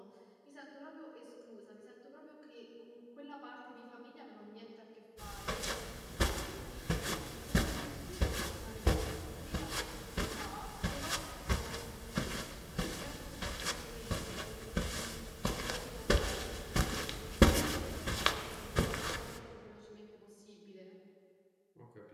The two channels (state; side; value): identical; both; correlation 1.00